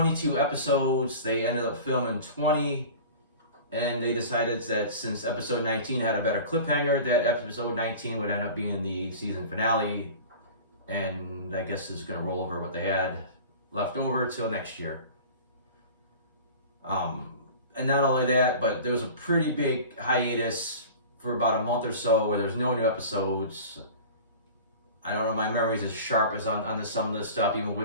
episodes. They ended up filming 20, and they decided that since episode 19 had a better cliffhanger, that episode 19 would end up being the season finale, and I guess it's going to roll over what they had left over till next year. And not only that, but there was a pretty big hiatus for about a month or so where there's no new episodes. I don't know, my memory's as sharp as on some of this stuff, even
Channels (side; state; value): both; inverted; correlation -0.38